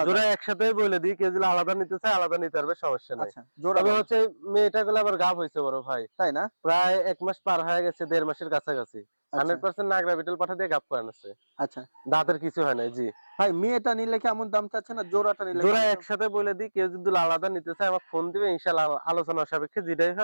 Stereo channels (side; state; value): both; inverted; correlation -1.00